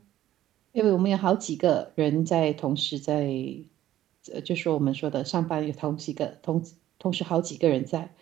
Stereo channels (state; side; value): quieter; left; 13.2 dB